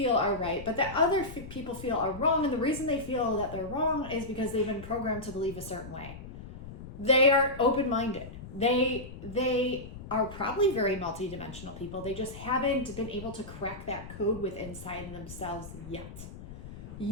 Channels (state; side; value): noise; left; rumble, 13 dB below the sound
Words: are right, but that other people feel are wrong. And the reason they feel that they're wrong is because they've been programmed to believe a certain way. They are open-minded. They are probably very multidimensional people. They just haven't been able to crack that code within inside themselves yet.